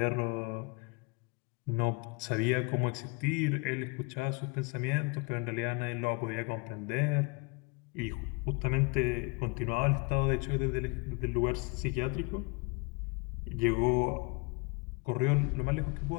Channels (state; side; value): quieter; right; 29.9 dB